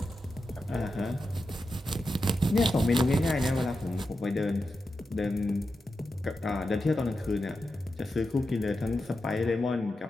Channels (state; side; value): normal; both; correlation 0.89